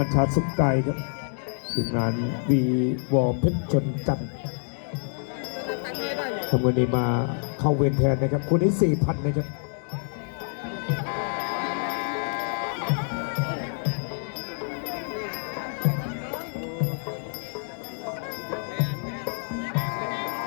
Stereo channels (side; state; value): right; silent; digital silence